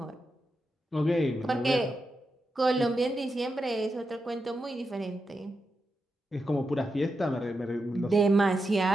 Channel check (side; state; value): both; normal; correlation 0.87